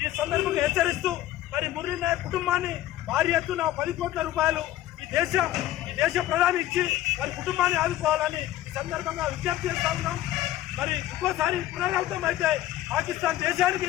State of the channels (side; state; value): right; quieter; 14.1 dB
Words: ఈ సందర్భంగా హెచ్చరిస్తూ మరి మురళీ నాయక్ కుటుంబాన్ని భారీ ఎత్తున 10 కోట్ల రూపాయలు ఈ దేశ ప్రధాని ఇచ్చి వారి కుటుంబాన్ని ఆదుకోవాలని ఈ సందర్భంగా విజ్ఞప్తి చేస్తా ఉన్నాం. మరి ఇంకోసారి పునరావృతం అయితే పాకిస్తాన్ దేశానికి